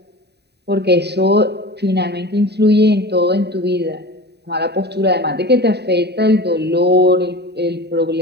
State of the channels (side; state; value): left; late; 0.48 ms